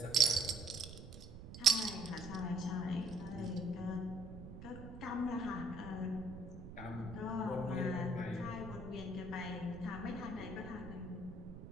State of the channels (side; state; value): right; noise; rumble, 12 dB below the sound